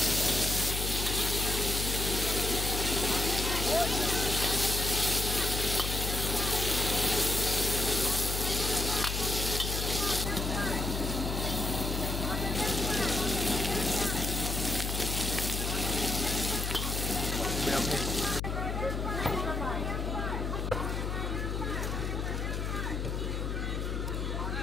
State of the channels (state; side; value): noise; left; hum, 2 dB below the sound